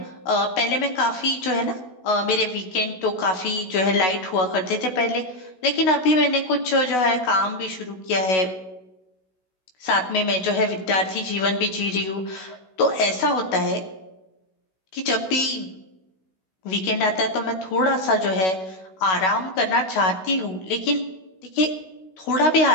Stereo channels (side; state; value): right; late; 16 ms